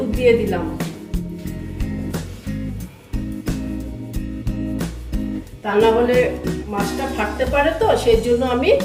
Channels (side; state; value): both; identical; correlation 1.00